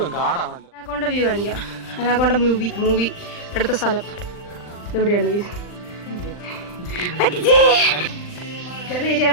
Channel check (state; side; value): late; right; 39 ms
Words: കാടാണല്ലോ. അനാക്കോണ്ട വ്യൂ കാണിക്കാം. അനാക്കോണ്ട മൂവി എടുത്ത സ്ഥലം എവിടെയാണ്? ചെറിയ